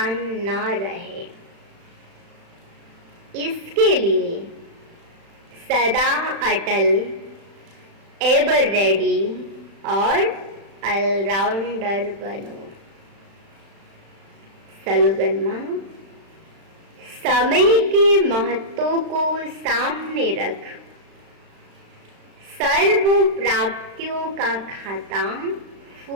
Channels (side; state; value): left; late; 36 ms